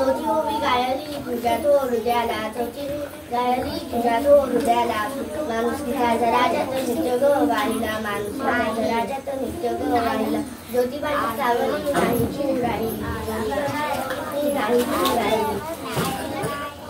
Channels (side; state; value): both; identical; correlation 1.00